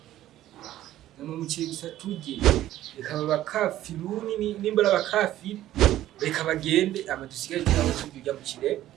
Nama muciri gusa tujye reka babakafiruni nimba abakafiri reka bagende amadusigaye cyangwa tujya mu kire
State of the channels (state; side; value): quieter; left; 13.6 dB